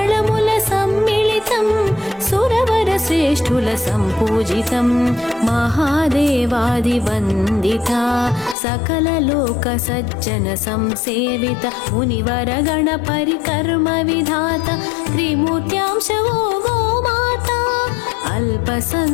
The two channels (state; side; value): drops out; right; at 8.6 s